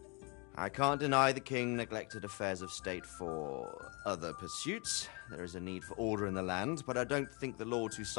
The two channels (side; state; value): right; quieter; 31.8 dB